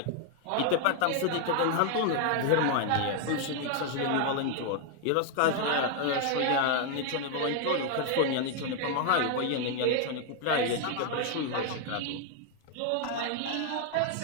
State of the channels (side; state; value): both; different; correlation 0.00